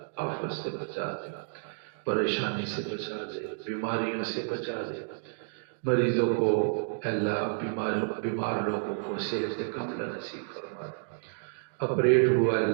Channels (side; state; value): left; silent; digital silence